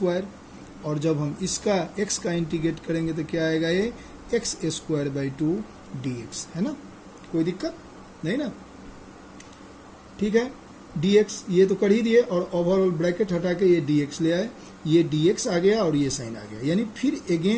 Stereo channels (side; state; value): both; identical; correlation 1.00